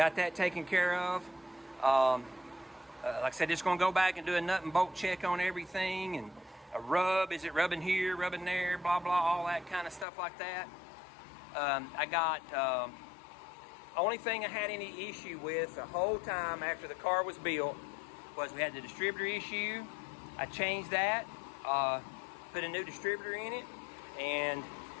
that taken care of. Like I said, just gonna go back and do a nut and bolt check on everything, and a rub, is it rubbing here, rubbing there, blah, blah, all that kind of stuff like that. I got, only thing I had any issue with the whole time after the car was built was we had the distributor issue. I changed that, put a new distributor in it, and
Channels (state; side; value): drops out; right; at 10.1 s